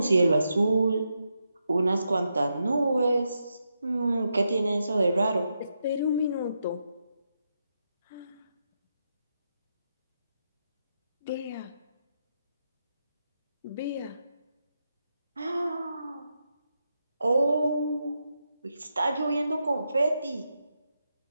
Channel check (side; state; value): both; inverted; correlation -0.85